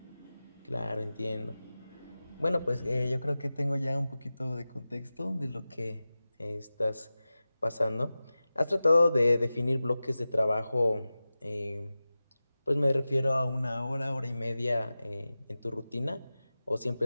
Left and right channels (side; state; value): both; inverted; correlation -0.95